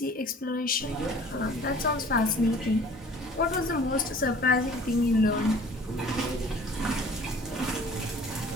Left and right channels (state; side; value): normal; both; correlation 0.49